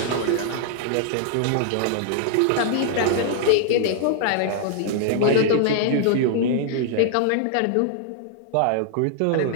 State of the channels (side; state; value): both; different; correlation 0.00